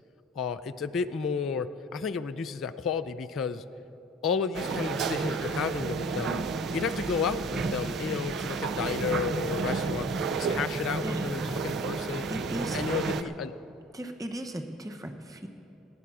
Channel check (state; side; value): normal; both; correlation 0.44